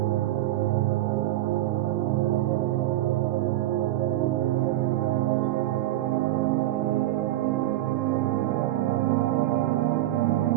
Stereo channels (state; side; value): quieter; left; 15.0 dB